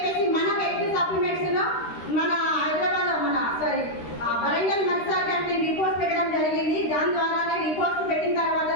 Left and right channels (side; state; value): right; late; 13 ms